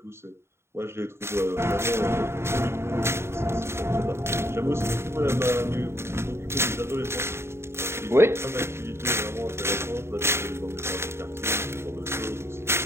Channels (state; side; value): late; left; 0.12 ms